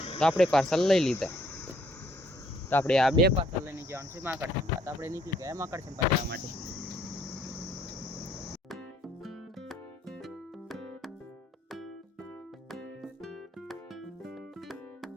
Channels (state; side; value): normal; both; correlation 0.65